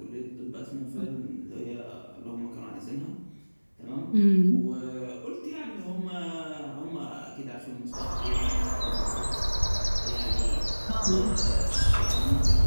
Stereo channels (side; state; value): both; inverted; correlation -1.00